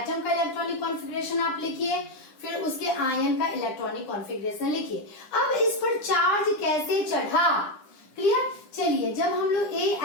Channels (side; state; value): right; late; 9.9 ms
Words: का इलेक्ट्रॉनिक कॉन्फ़िगरेशन आप लिखिए, फिर उसके आयन का इलेक्ट्रॉनिक कॉन्फ़िगरेशन लिखिए। अब इस पर चार्ज कैसे चढ़ा? क्लियर? चलिए, जब हम लोग